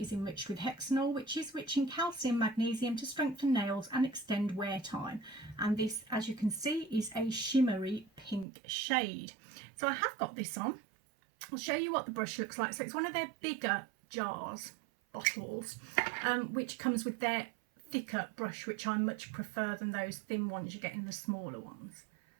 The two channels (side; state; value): left; drops out; at 8.5 s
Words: enriched with hexanol, which is rich in calcium magnesium to strengthen nails and extend wear time. And this, as you can see, is a shimmery pink shade. So I have got this on. I'll show you what the brush looks like. So it's one of their bigger jars, bottles, which comes with their thicker brush, which I much prefer than those thin ones you get in the smaller ones.